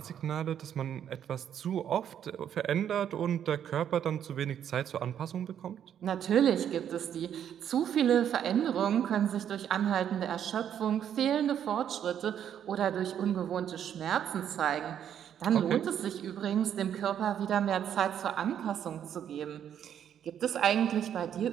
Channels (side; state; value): left; quieter; 9.4 dB